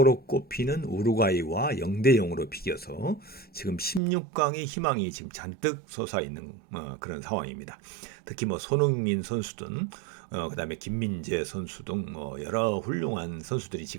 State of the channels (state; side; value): drops out; left; at 4.0 s